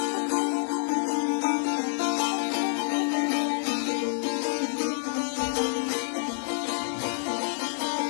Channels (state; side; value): silent; right; 60 dB below the other